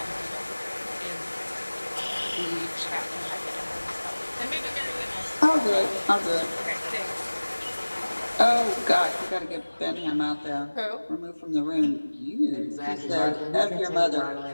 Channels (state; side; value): inverted; both; correlation -1.00